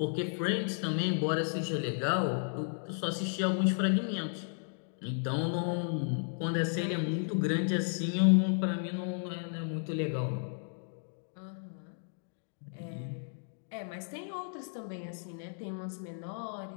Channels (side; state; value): right; silent; digital silence